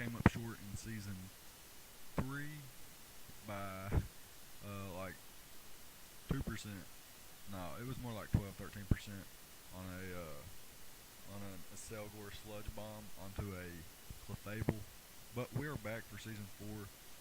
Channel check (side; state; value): both; identical; correlation 1.00